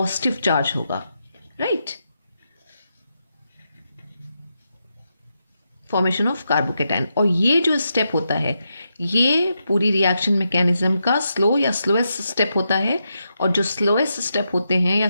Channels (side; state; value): both; inverted; correlation -0.85